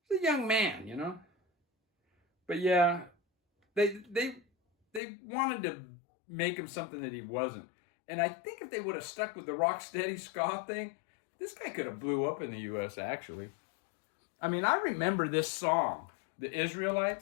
He's a young man, you know. But yeah, they wanted to make him something that he wasn't. And I think if they would have stuck with the rock steady ska thing, this guy could have blew up in the U.S. actually. I mean, I remember this song, The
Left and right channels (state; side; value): drops out; right; at 5.0 s